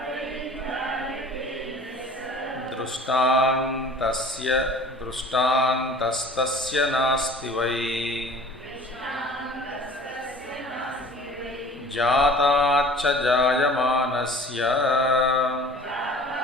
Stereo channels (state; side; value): normal; both; correlation 0.46